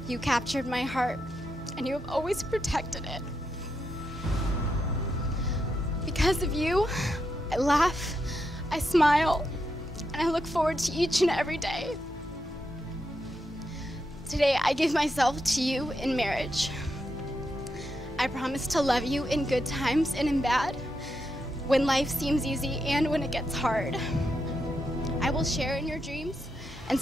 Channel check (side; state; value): both; normal; correlation 0.84